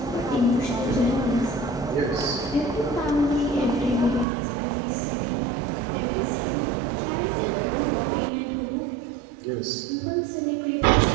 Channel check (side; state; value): left; drops out; at 4.2 s